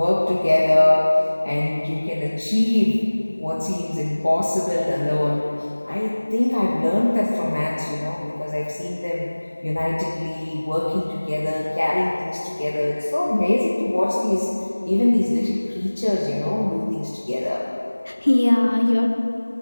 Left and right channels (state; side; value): inverted; both; correlation -1.00